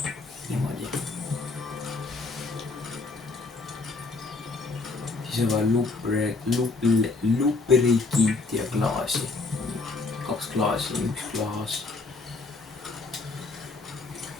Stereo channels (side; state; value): right; quieter; 3.7 dB